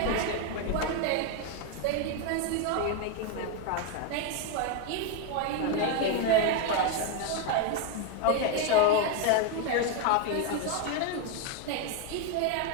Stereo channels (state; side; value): different; both; correlation 0.01